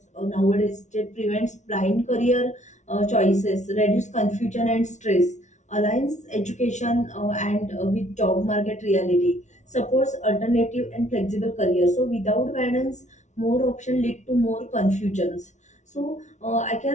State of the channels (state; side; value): late; right; 0.34 ms